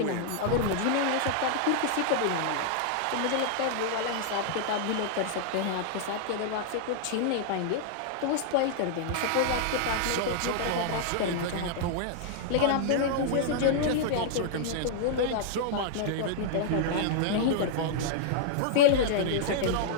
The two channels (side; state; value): both; different; correlation -0.01